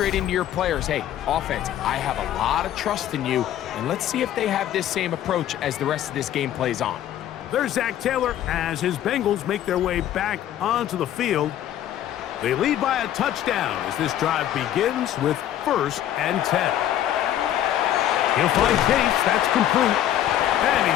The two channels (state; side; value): quieter; right; 11.7 dB